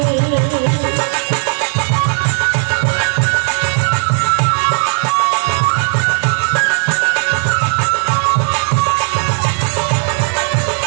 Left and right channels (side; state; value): left; silent; 55 dB below the other